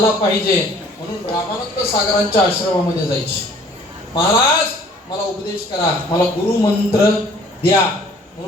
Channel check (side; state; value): both; normal; correlation 0.54